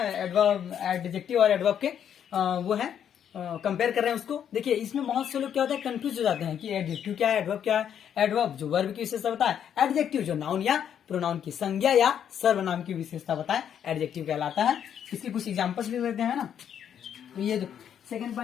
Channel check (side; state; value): right; quieter; 9.0 dB